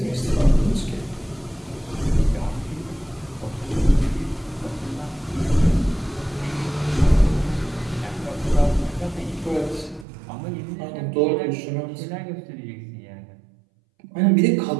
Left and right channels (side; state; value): left; drops out; at 10.1 s